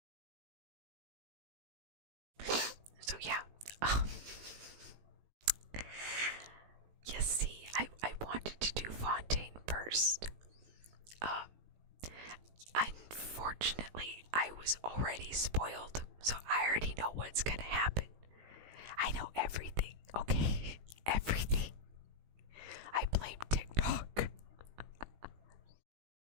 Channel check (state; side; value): late; left; 18 ms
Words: So yeah, you see, I wanted to do Fontaine first. Unfortunately, I was already spoiled, so I already know what's gonna happen. I know everything, okay? Everything. I blame TikTok.